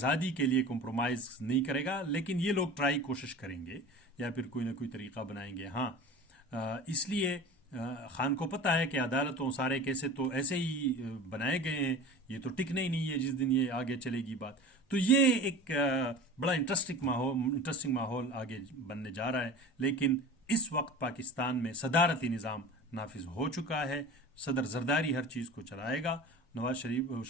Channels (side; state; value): both; normal; correlation 0.36